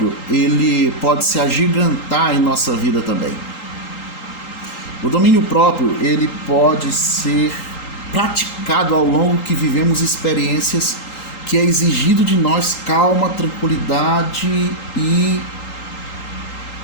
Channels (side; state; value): right; late; 3.8 ms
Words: ele pode se agigantar em nossa vida também. O domínio próprio, ele pode ser praticado ao longo que vivemos experiências que é exigido de nós calma, tranquilidade e,